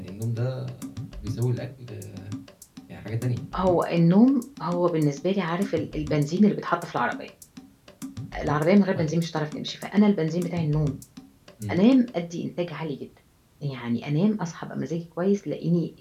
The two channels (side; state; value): both; identical; correlation 1.00